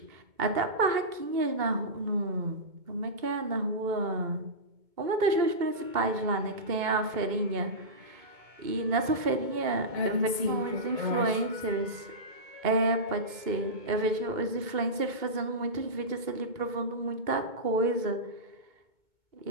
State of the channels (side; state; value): left; late; 2.2 ms